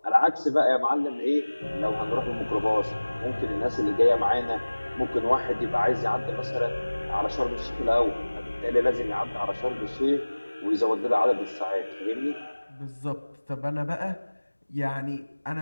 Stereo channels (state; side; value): inverted; both; correlation -1.00